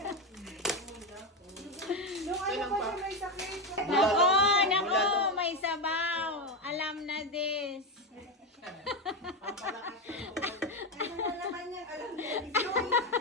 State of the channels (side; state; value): both; normal; correlation 0.12